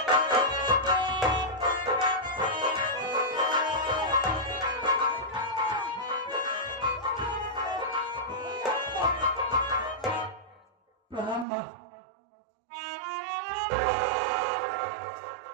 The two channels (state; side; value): drops out; left; at 11.5 s